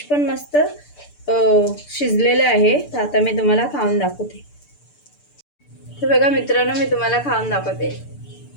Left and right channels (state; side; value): late; right; 6.8 ms